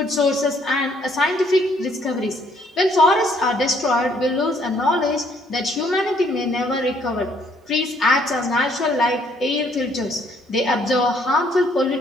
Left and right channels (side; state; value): both; normal; correlation 0.66